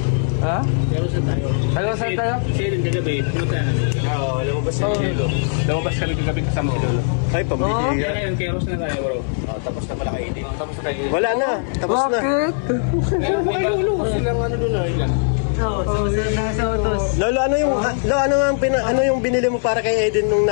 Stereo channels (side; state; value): right; silent; digital silence